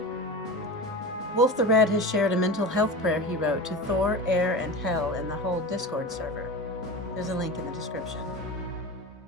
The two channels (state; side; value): normal; both; correlation 0.28